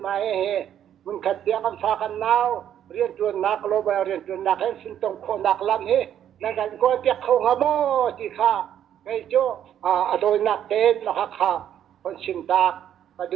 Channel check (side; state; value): left; quieter; 10.2 dB